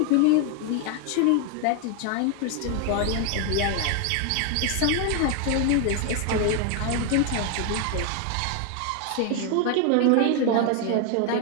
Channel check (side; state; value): both; different; correlation 0.01